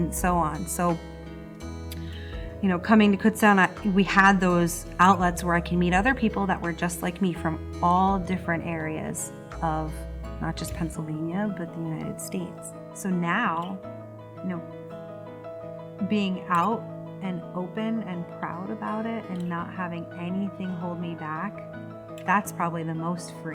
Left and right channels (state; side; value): identical; both; correlation 1.00